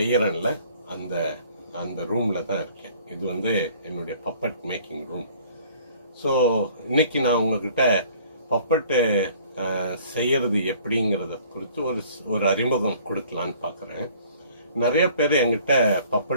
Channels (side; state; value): both; inverted; correlation -0.54